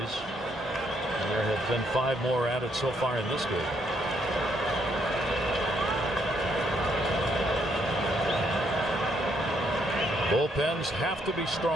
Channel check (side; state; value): both; normal; correlation 0.72